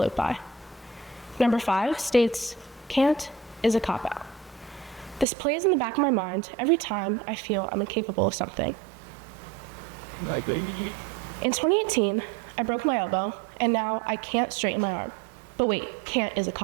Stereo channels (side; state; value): left; drops out; at 5.2 s